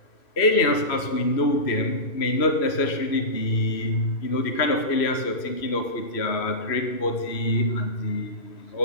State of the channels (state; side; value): late; right; 3.0 ms